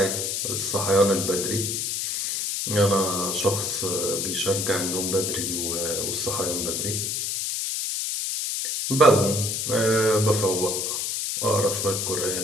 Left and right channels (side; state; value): left; noise; hiss, 1 dB below the sound